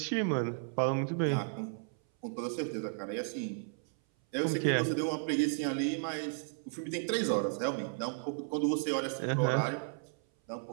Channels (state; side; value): silent; left; 55 dB below the other